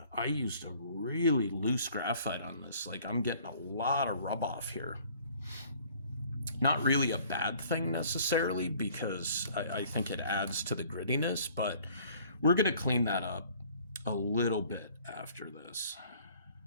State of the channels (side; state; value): both; inverted; correlation -0.55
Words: I used a really loose graphite on this. Like, I'm getting a lot of rub off here. Not really a bad thing necessarily, because I think it adds to the grittiness, but we're going to clean that up a little bit after this.